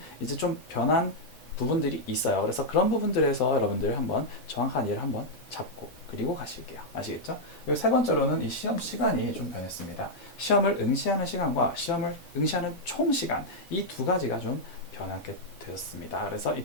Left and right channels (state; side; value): normal; both; correlation -0.03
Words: 이제 좀 변한 부분들이 있어요. 그래서 그런 부분들에서 여러분들 한번 정확한 이해를 한번 잡고 그리고 가실게요. 아시겠죠? 그리고 세 번째로는 이 시험 시간이 좀 변했습니다. 시험을 응시하는 시간과 시험을 응시하는 총 시간 이 두 가지가 좀 변하게 되었습니다. 그래서 이